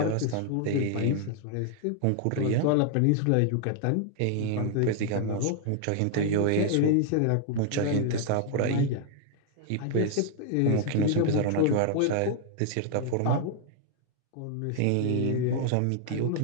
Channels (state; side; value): different; both; correlation 0.00